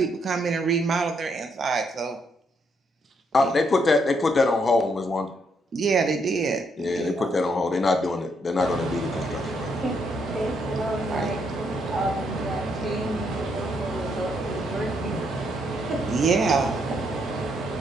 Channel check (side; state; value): both; normal; correlation 0.75